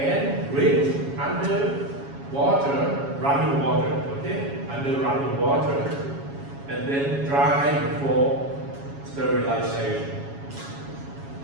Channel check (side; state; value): left; late; 7.2 ms